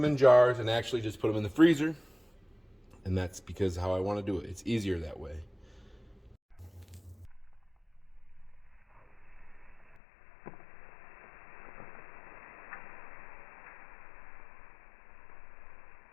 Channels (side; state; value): right; drops out; at 10.0 s